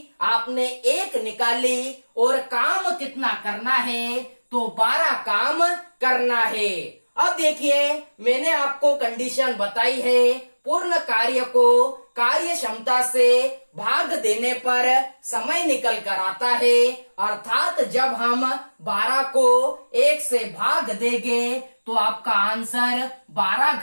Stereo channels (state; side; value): inverted; both; correlation -1.00